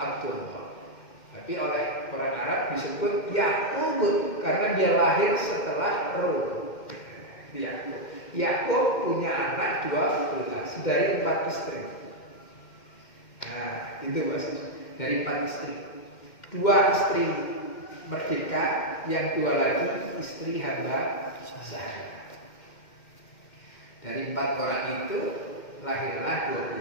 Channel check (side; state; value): right; late; 2.1 ms